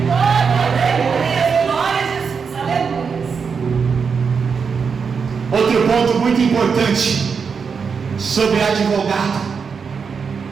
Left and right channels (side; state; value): left; quieter; 5.8 dB